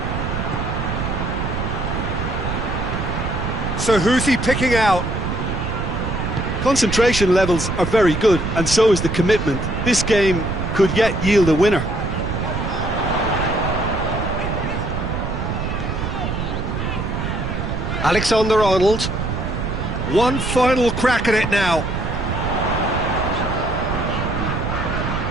So who's he picking out? Concentration levels are very good, and so is the commitment. This game could yet yield a winner. Alexander-Arnold. One final crack at it now.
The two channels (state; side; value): noise; right; rumble, 3 dB below the sound